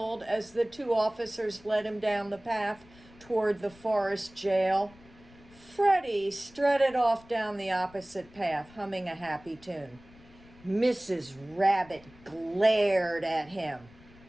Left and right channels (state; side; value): noise; left; rumble, 24 dB below the sound